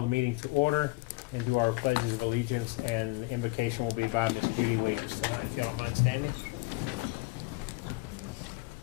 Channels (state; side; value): quieter; right; 23.6 dB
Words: the meeting to order and do our pledges of allegiance, and the invocation will be by Miss Judy Wages tonight. If you don't mind standing.